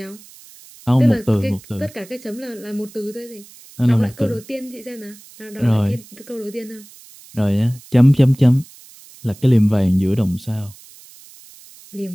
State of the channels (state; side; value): noise; right; hiss, 22 dB below the sound